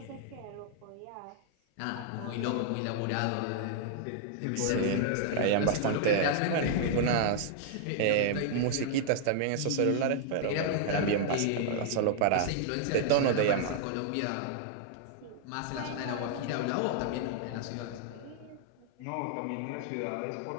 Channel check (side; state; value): both; different; correlation -0.01